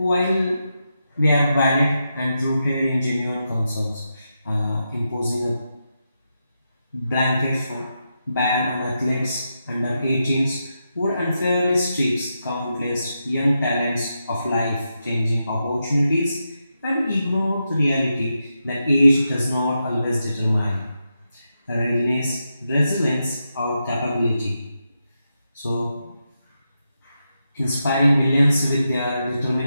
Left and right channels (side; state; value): both; inverted; correlation -0.86